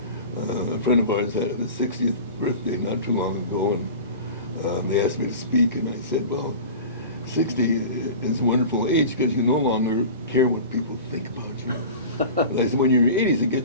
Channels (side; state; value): both; inverted; correlation -0.36